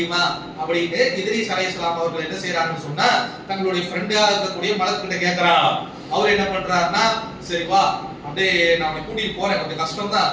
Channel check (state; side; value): identical; both; correlation 1.00